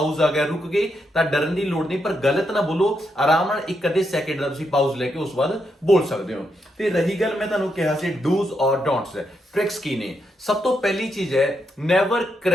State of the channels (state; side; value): normal; both; correlation 0.81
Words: ਆ ਗਿਆ ਰੁਕ ਗਏ ਤਾਂ ਡਰਨ ਦੀ ਲੋੜ ਨਹੀਂ ਪਰ ਗਲਤ ਨਾ ਬੋਲੋ ਆਰਾਮ ਨਾਲ ਇੱਕ ਅੱਧੇ ਸੈਕਿੰਡ ਦਾ ਤੁਸੀਂ ਪਾਊਜ਼ ਲੈ ਕੇ ਉਸ ਬਾਅਦ ਬੋਲ ਸਕਦੇ ਹੋ ਤੇ ਰਹੀ ਗੱਲ ਮੈਂ ਤੁਹਾਨੂੰ ਕਿਹਾ ਸੀ ਡੂਜ਼ ਔਰ ਡੋਂਟਸ ट्रिक्स की ने सब तो पहली चीज है नेवर